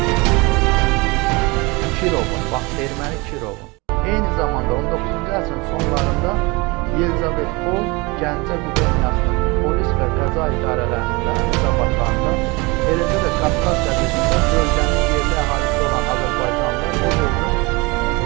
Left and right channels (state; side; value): quieter; left; 25.8 dB